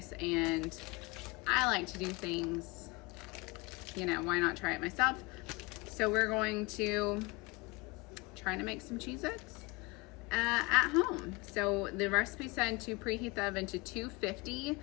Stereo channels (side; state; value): right; quieter; 24.8 dB